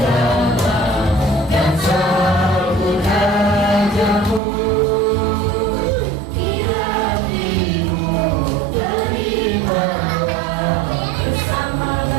dan sambut rajamu, di hatimu terimalah bersama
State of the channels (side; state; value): left; drops out; at 4.4 s